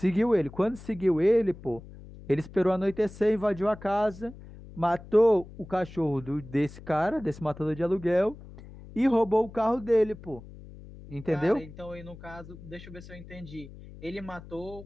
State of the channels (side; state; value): left; noise; hum, 17 dB below the sound